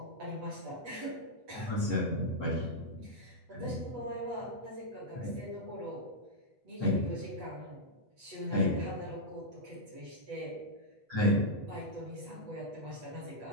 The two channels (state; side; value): late; left; 8.1 ms